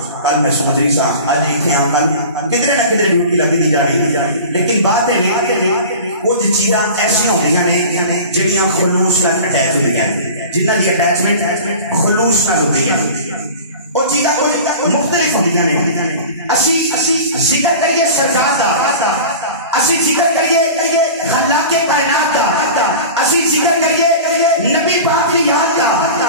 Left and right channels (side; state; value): both; inverted; correlation -0.37